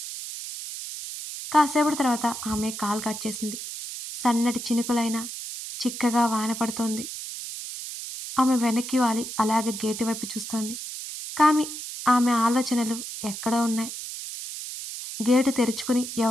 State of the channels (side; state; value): right; noise; hiss, 8 dB below the sound